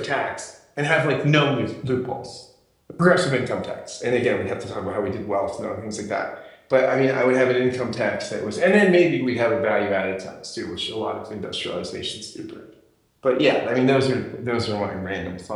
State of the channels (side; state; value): both; identical; correlation 1.00